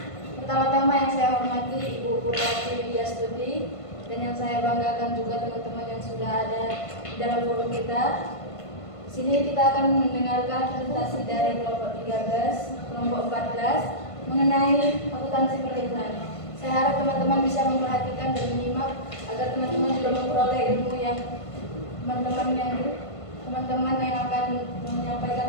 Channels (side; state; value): right; late; 1.5 ms